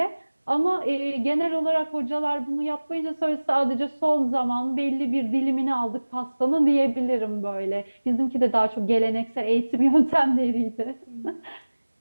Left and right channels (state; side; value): inverted; both; correlation -1.00